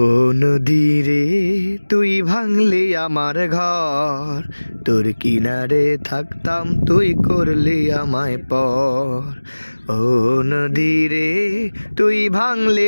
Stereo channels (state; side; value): inverted; both; correlation -1.00